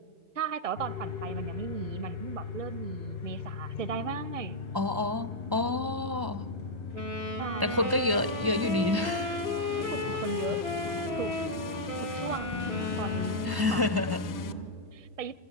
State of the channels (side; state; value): left; late; 1.1 ms